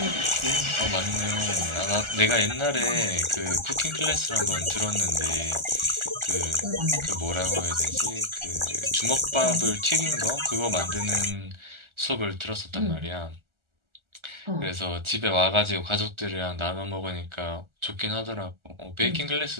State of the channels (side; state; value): left; late; 1.4 ms